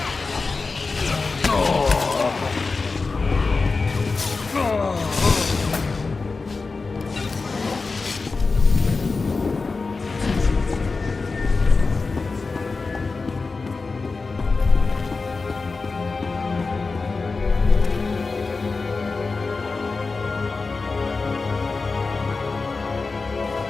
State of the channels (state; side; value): quieter; right; 4.1 dB